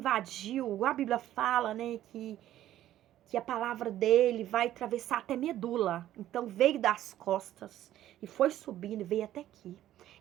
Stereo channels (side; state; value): left; quieter; 12.9 dB